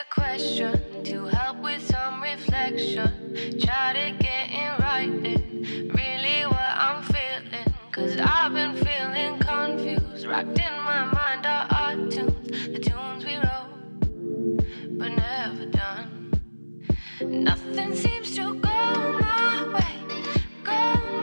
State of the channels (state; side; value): inverted; both; correlation -1.00